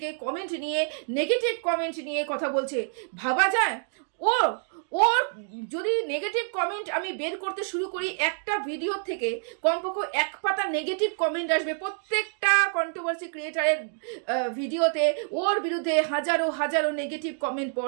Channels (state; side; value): silent; left; 60 dB below the other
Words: কমেন্ট নিয়ে, নেগেটিভ কমেন্ট নিয়ে কথা বলছে। ভাবা যায় ওর যদি নেগেটিভ কমেন্ট আমি বের করতে শুরু করি, একটা ভিডিও থেকে কমপক্ষে এক পাতা নেগেটিভ কমেন্ট আসবে প্রত্যেকটা কন্ট্রোভার্সি ক্রিয়েটারের ভিডিওতে। ওর বিরুদ্ধে হাজারো নেগেটিভ কমেন্ট